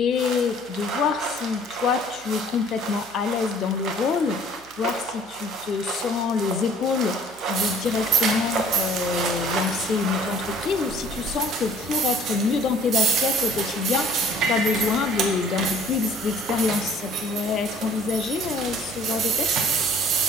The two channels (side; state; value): right; noise; hum, 28 dB below the sound